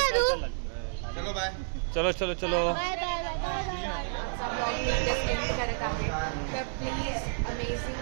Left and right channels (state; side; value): silent; left; digital silence